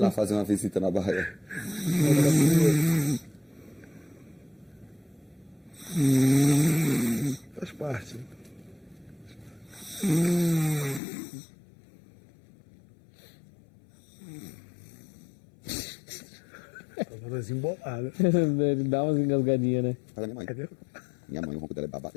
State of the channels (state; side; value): drops out; right; at 11.0 s